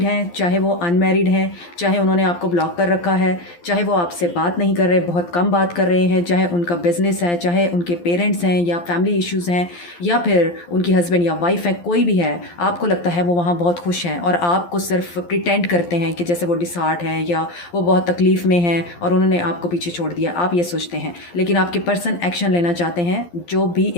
हैं चाहे वो अनमैरिड हैं, चाहे उन्होंने आपको ब्लॉक कर रखा है, चाहे वो आपसे बात नहीं कर रहे, बहुत कम बात कर रहे हैं, चाहे उनका बिज़नेस है, चाहे उनके पेरेंट्स हैं या फैमिली इश्यूज़ हैं, या फिर उनकी हस्बैंड या वाइफ है, कोई भी है, आपको लगता है वो वहाँ बहुत खुश हैं और आपको सिर्फ प्रिटेंड करते हैं कि जैसे वो डिसहार्ट है या वो बहुत तकलीफ़ में हैं और उन्होंने आपको पीछे छोड़ दिया, आप ये सोचते हैं। लेकिन आपके पर्सन एक्शन लेना चाहते हैं, जो भी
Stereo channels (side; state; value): right; late; 12 ms